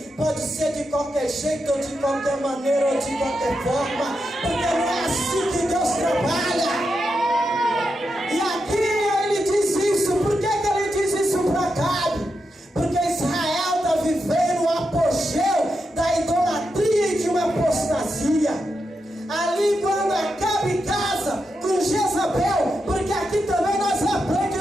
pode ser de qualquer jeito, ou de qualquer maneira, ou de qualquer forma, porque não é assim que Deus trabalha. E aqui ele diz isso. Por que ele diz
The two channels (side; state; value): both; normal; correlation 0.86